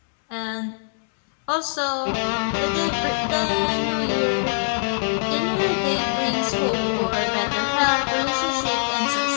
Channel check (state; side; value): silent; right; 64 dB below the other